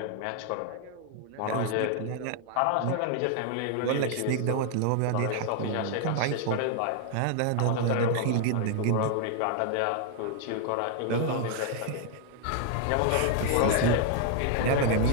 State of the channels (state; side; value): different; both; correlation 0.00